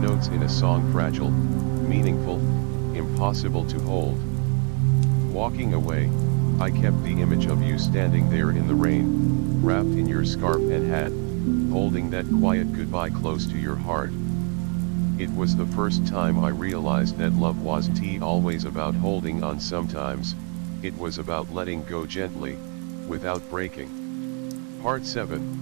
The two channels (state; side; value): quieter; left; 39.3 dB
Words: in a song, fragile, meaningful, impossible to hold. Walking away, I kept the image of you standing there in the rain, wrapped in your scarf and hat, holding that quiet goodbye close to your heart. It was the first time I realized that love wasn't always about holding on. Sometimes, it was about letting go gently, without breaking. Part